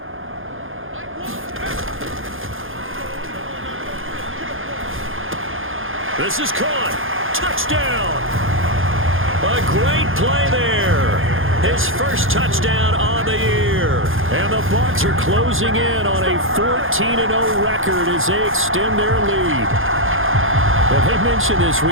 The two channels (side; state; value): left; late; 0.59 ms